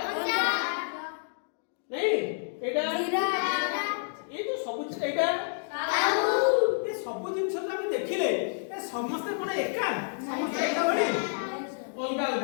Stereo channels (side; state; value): right; silent; digital silence